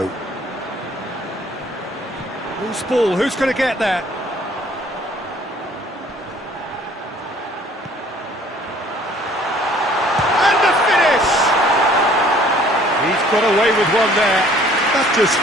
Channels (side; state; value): both; normal; correlation 0.56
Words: Loose ball, who's going to get that? And the finish! He's got away with one there. That's just